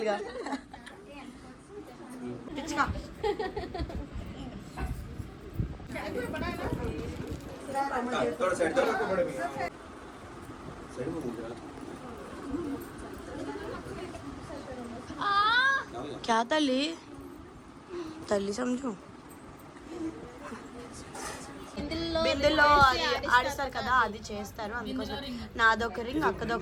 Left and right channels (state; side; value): identical; both; correlation 1.00